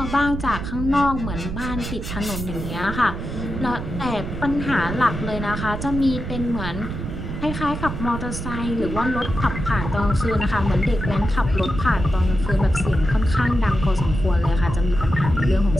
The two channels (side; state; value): right; noise; rumble, 6 dB below the sound